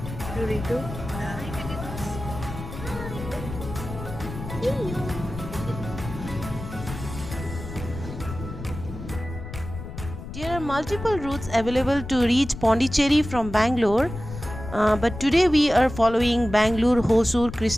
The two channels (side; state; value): left; noise; rumble, 10 dB below the sound